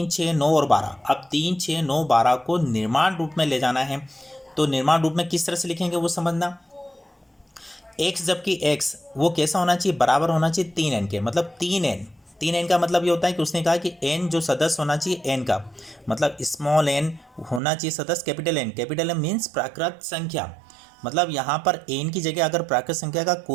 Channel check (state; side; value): drops out; left; at 17.6 s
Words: 6, 9 और 12। अब 3, 6, 9, 12 को निर्माण रूप में ले जाना है। तो निर्माण रूप में किस तरह से लिखेंगे वो समझना। x जबकि x वो कैसा होना चाहिए, बराबर होना चाहिए 3n के, मतलब 3n का मतलब ये होता है कि उसने कहा कि n जो सदस्य होना चाहिए n का, मतलब स्मॉल n होना चाहिए सदस्य capital N। Capital M means प्राकृत संख्या। मतलब यहाँ पर n की जगह अगर प्राकृत संख्या का